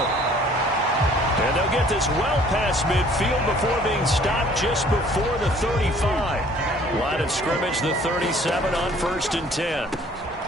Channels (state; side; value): normal; both; correlation 0.55